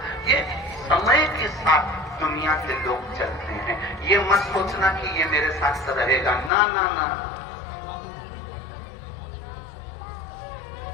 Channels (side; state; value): right; drops out; at 6.5 s